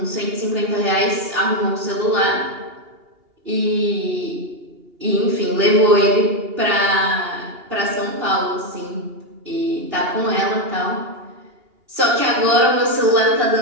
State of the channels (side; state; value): left; late; 2.8 ms